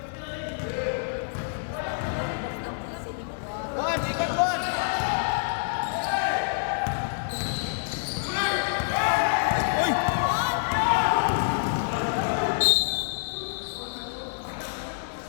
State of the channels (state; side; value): silent; right; digital silence